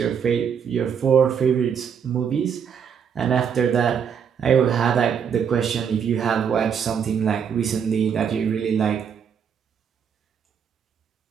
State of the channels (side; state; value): left; quieter; 7.4 dB